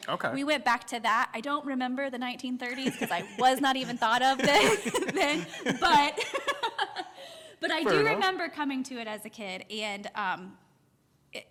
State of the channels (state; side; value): identical; both; correlation 1.00